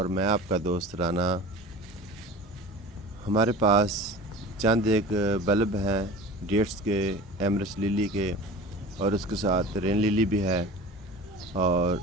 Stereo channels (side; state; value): both; normal; correlation 0.37